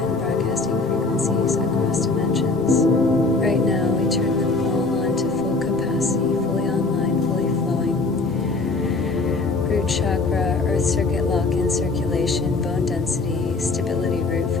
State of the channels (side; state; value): right; quieter; 3.6 dB